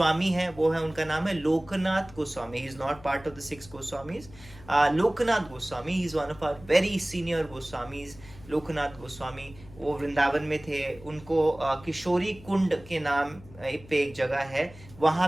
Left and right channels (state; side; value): noise; left; hum, 20 dB below the sound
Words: है वो है, उनका नाम है Lokanath Goswami. He is not part of the 6 Goswamis. Lokanath Goswami, he is one of our very senior Goswamis. Lokanath Goswami वो वृंदावन में थे. उनको किशोरी कुंड के नाम पे एक जगह है, वहाँ